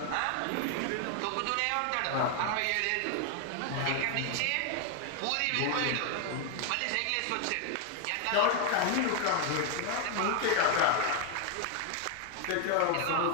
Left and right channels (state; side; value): different; both; correlation 0.00